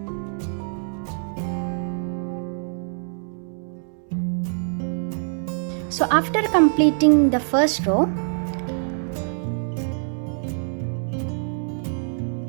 So after completing the first row,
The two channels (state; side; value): silent; left; digital silence